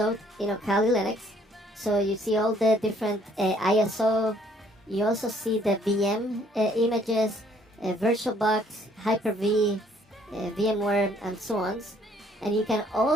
Kali Linux. So you see all the different ISO. You also see the VM images, VirtualBox, Hyper-V, VMware, and so on. And you can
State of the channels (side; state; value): both; normal; correlation 0.63